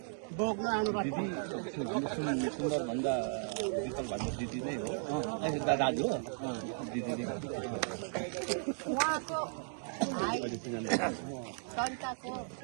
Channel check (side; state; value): left; silent; digital silence